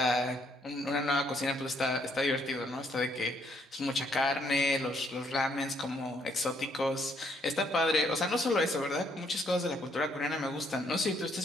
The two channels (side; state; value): both; normal; correlation 0.70